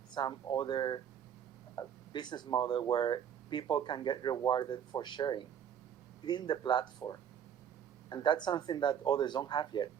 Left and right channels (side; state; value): left; quieter; 8.8 dB